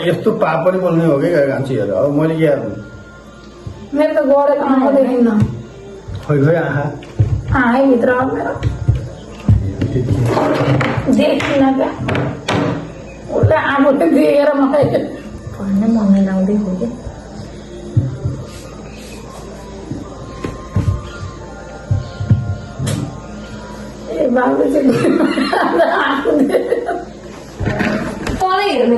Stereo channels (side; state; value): both; identical; correlation 1.00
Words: यस्तो पाप पनि बोल्ने हो कि कान्छीहरू अब मैले के गर्नु मेरो त गढेको आँखा देखिन्न खोइ खोइ आँखा आँखै भित्र हो मेरो देखिन क्या उसले आँखा देखेर मलाई भन्न मम्मी लाउँदै हो कि ए बाबु चाहिँ तलै हेर्नु